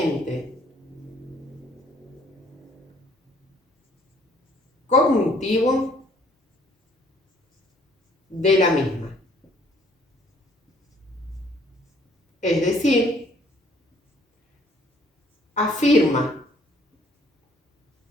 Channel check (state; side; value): normal; both; correlation 0.61